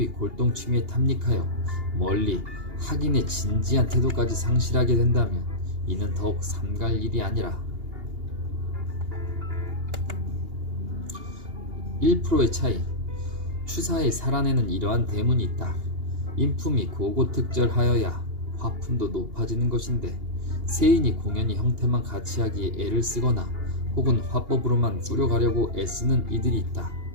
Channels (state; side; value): late; left; 2.8 ms